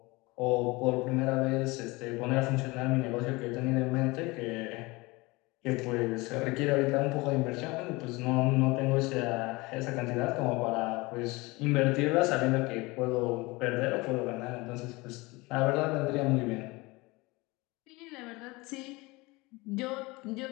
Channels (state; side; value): quieter; right; 23.5 dB